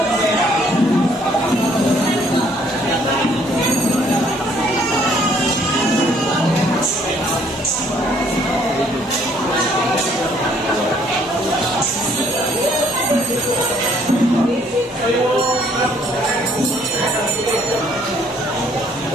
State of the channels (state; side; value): normal; both; correlation 0.63